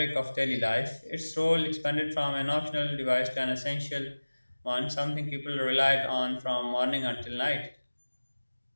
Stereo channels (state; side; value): inverted; both; correlation -1.00